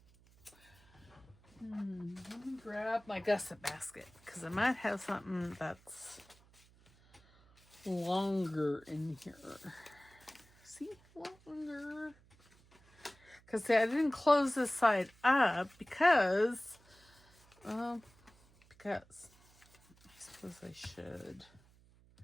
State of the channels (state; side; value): noise; right; hum, 28 dB below the sound